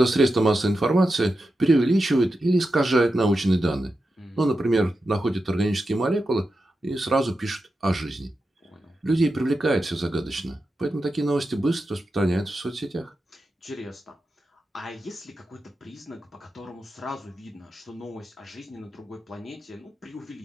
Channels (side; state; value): both; normal; correlation 0.90